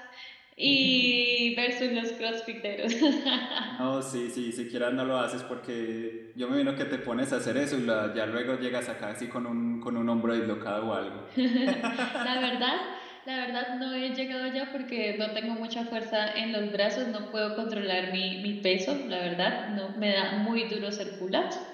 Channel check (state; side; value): identical; both; correlation 1.00